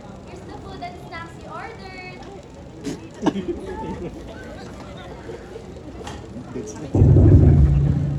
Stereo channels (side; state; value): both; identical; correlation 1.00